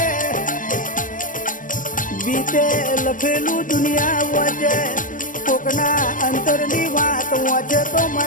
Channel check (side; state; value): right; late; 0.38 ms